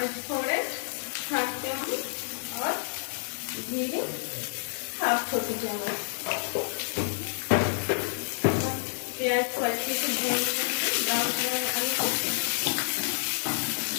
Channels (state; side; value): silent; right; digital silence